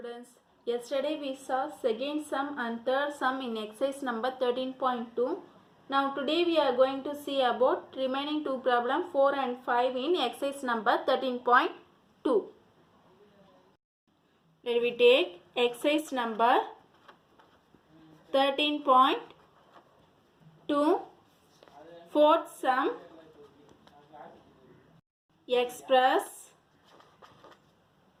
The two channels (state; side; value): identical; both; correlation 1.00